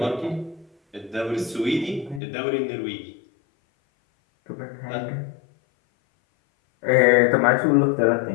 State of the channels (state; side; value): drops out; right; at 2.2 s